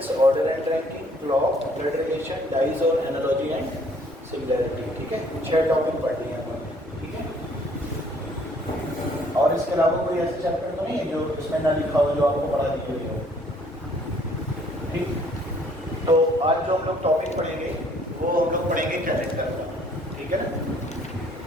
order and ranking, clock, blood relation, dice और एनालॉजी एंड सिमिलैरिटी, ठीक है। 6 टॉपिक पढ़ लिए हमने, ठीक है। और इसके अलावा कोई ऐसे चैप्टर तो नहीं है जो इसमें ना लिखा हो, जो आपको पढ़ा दी हुई हो, ठीक। तो आज जो हम लोग टॉपिक पढ़ेंगे वो हम लोग पढ़ेंगे कैलेंडर का, ठीक है ना।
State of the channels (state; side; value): normal; both; correlation 0.61